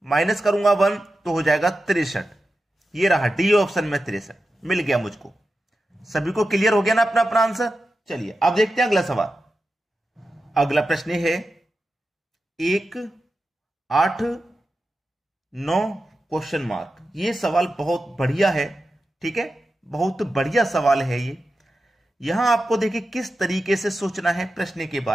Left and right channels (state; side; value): normal; both; correlation 0.91